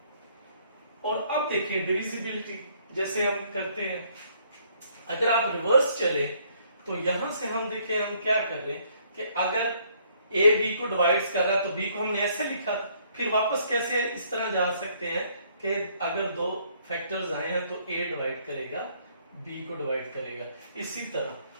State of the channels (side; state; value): both; inverted; correlation -0.65